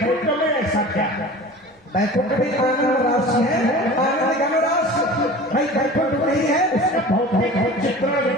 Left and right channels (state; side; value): normal; both; correlation 0.39